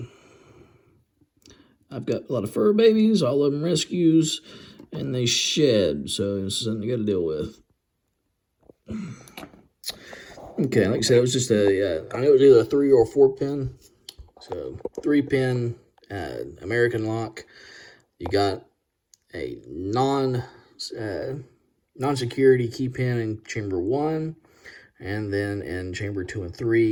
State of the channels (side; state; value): both; identical; correlation 1.00